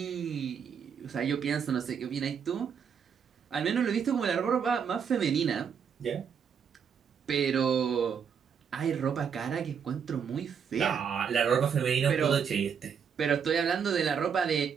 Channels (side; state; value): left; quieter; 7.1 dB